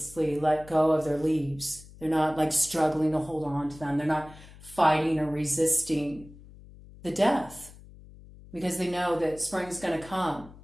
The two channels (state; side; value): noise; left; hum, 20 dB below the sound